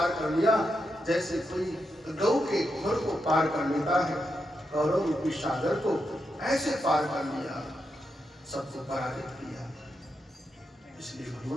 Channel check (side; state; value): both; normal; correlation 0.84